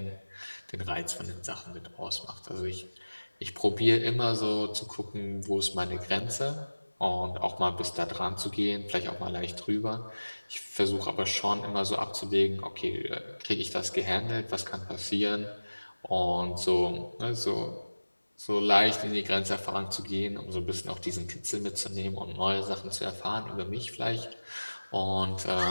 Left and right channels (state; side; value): inverted; both; correlation -1.00